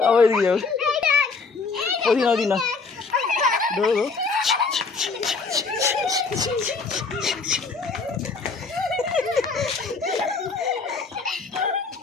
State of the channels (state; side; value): quieter; right; 4.5 dB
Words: আবার এদিকে যাবে, ওদিকে না ওদিকে না, দৌড়ো